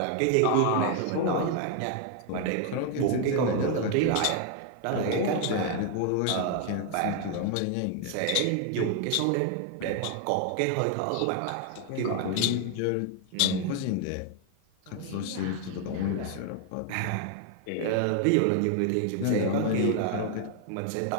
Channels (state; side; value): different; both; correlation 0.00